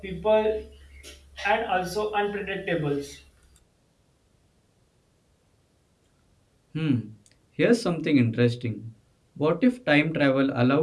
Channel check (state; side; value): identical; both; correlation 1.00